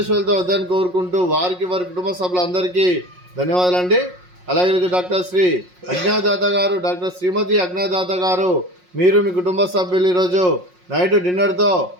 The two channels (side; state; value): left; late; 5.5 ms